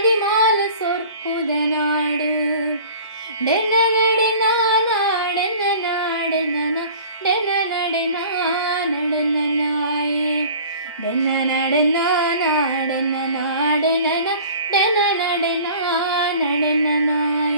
ಸೊರ್ಪುದ ನಾಡು ಡೆನ ನಡೆನ ನಾಡೆನ ನಾಡೆನ ಡೆನ ನಡೆನ ನಡೆನ ನಾಯೆ ಡೆನ ನಡೆನ ನಾಡೆನ ನಾಡೆನ ಡೆನ ನಡೆನ ನಡೆನ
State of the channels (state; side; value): inverted; both; correlation -0.45